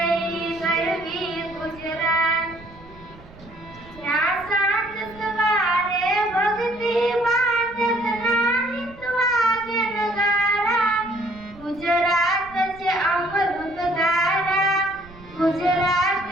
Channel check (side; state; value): right; noise; rumble, 21 dB below the sound